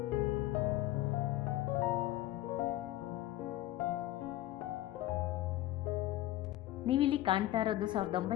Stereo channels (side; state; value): right; quieter; 15.2 dB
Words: ನೀವಿಲ್ಲಿ ಕಾಣ್ತಾ ಇರೋದು